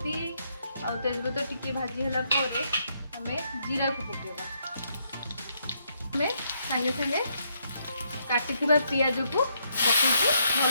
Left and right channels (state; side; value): inverted; both; correlation -0.75